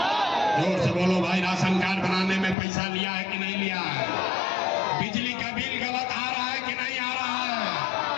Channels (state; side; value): drops out; right; at 2.6 s